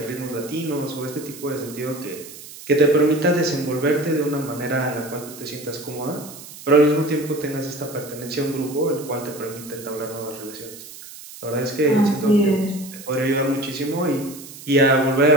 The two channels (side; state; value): right; noise; hiss, 16 dB below the sound